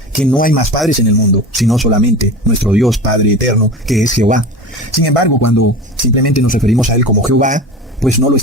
que no hay más padres en el mundo, sino solamente nuestro Dios Padre eterno, que es Jehová. Sin embargo, cuando simplemente nos referimos a Él como Jehová, pues no lo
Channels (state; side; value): normal; both; correlation 0.31